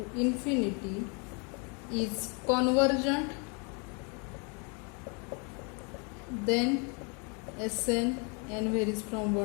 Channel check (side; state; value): right; quieter; 34.8 dB